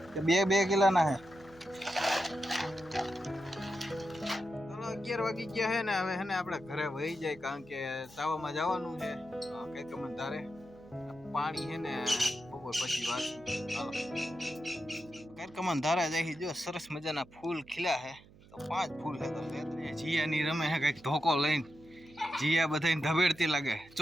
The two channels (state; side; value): noise; right; hum, 23 dB below the sound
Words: કે 2 કિલોના છે ચાલો 11 વાગી ગયા છે ને હવે હે ને આપણે ઘરે વહી જાય કારણ કે તાવામાં જવાનું છે કઈક મને ધારે પાણી છે ને બપોર પછી વાંચું ચાલો કઈક મને ધારે જાય જો સરસ મજાના ફૂલ ખીલ્યા છે તો 5 ફૂલ છે તો જીયાની રમે છે કઈક ધોકો લઈને જીયા બધાને ધબેડતી લાગે